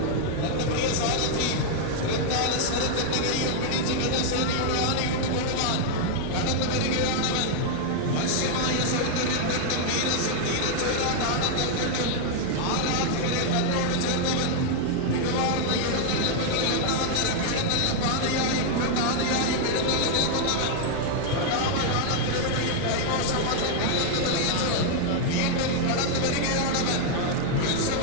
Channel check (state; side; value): different; both; correlation 0.00